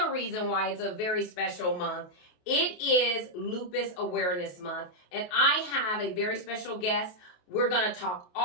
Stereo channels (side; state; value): right; late; 28 ms